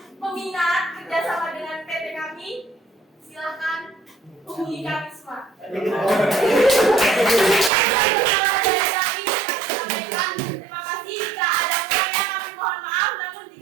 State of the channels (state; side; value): drops out; left; at 7.7 s